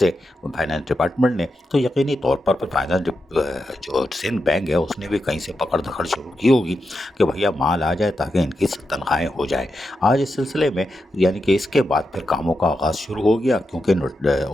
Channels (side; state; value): both; normal; correlation 0.87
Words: फाइनेंस डिपार्टमेंट ने। तो यकीनी तौर पर जो सिंध बैंक है उसने भी कहीं से पकड़ धकड़ शुरू की होगी कि भैया माल आ जाए ताकि इनकी तनख्वाहें हो जाए। आज इस सिलसिले में यानी कि इसके बाद फिर कामों का आगाज़ शुरू हो गया, क्योंकि